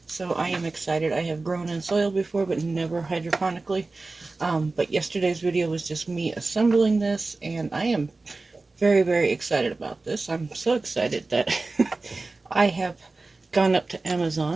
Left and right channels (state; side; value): quieter; left; 3.5 dB